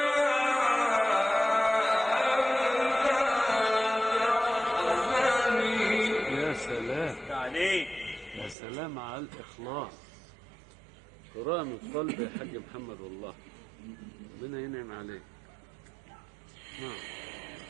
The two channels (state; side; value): drops out; left; at 8.6 s